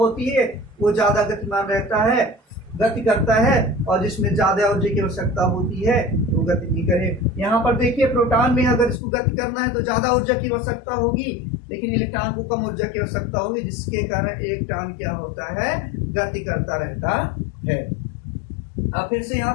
है वो ज्यादा गतिमान रहता है, गति करता है, और जिसमें ज्यादा ऊर्जा की आवश्यकता होती है वो गति नहीं करे। यहाँ पर देखिए, प्रोटॉन में अगर इसको गति करना है तो ज्यादा ऊर्जा की आवश्यकता होगी, लेकिन इलेक्ट्रॉन को कम ऊर्जा की आवश्यकता होगी, जिसके कारण इलेक्ट्रॉन क्या होता है, गति करता रहता है। अब फिर से यहाँ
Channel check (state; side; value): drops out; right; at 9.0 s